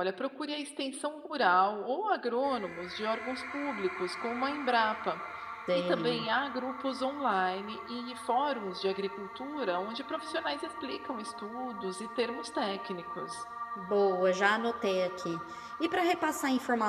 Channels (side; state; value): both; identical; correlation 1.00